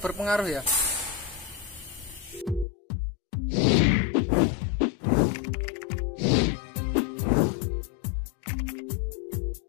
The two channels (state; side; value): drops out; right; at 2.7 s